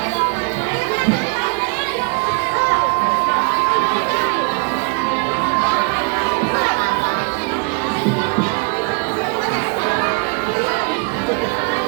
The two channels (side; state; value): left; quieter; 33.4 dB